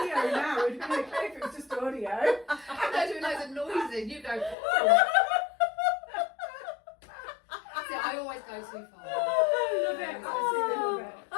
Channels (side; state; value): right; drops out; at 4.5 s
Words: now. It'd be okay if it was just audio. I'm not doing loads of noise and you go, oh. See, I always go too far. I love it. Absolutely love it.